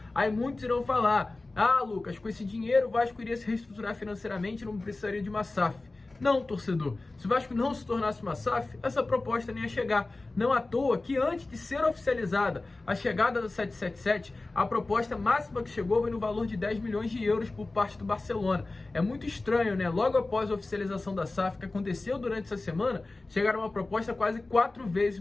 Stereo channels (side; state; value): right; quieter; 3.2 dB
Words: Aí muitos irão falar, Lucas, com esse dinheiro o Vasco iria se reestruturar financeiramente e não precisaria de uma SAF. Não, torcedor, se o Vasco não se tornasse uma SAF, essa proposta nem ia chegar. Não à toa que antes de ser oficializada a chegada do 777, a proposta máxima que chegou foi no valor de 10 milhões de euros por parte do Barcelona. É muito estranho, né? Logo após a oficialização da SAF, que aconteceu durante essa semana, chegaram uma proposta quase 4 vezes